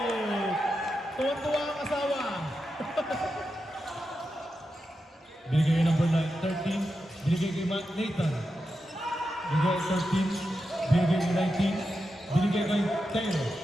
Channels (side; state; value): both; normal; correlation 0.89